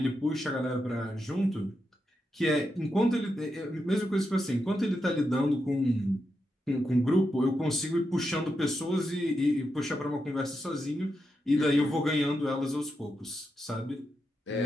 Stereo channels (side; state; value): both; normal; correlation 0.86